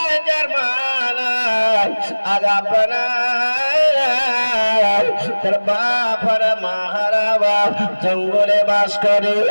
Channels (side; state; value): both; inverted; correlation -1.00